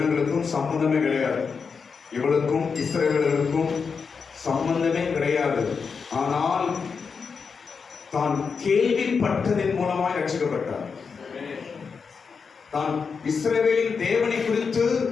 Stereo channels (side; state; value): right; quieter; 5.5 dB